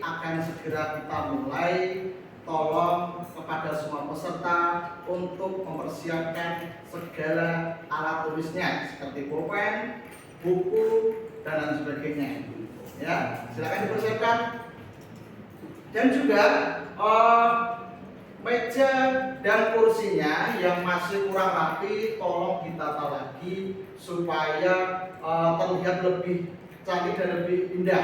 segera kita mulai. Tolong kepada semua peserta untuk mempersiapkan segala alat tulisnya seperti pulpen, buku, dan lain sebagainya. Ya, silakan dipersiapkan. Dan juga meja dan kursinya yang masih kurang rapi tolong ditata lagi supaya terlihat lebih cantik dan lebih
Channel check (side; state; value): both; identical; correlation 1.00